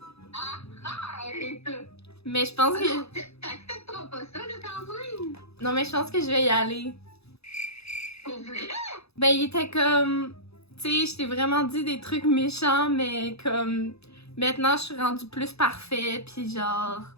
Arrête. Mais je pense que... T'accepteras pas ça, là, quand même. Non, mais je pense que je vais y aller. Pour vrai? Ben, il était comme... Tu sais, je t'ai vraiment dit des trucs méchants, mais comme... Maintenant, je suis rendue plus parfait, puis genre...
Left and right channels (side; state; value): right; late; 0.79 ms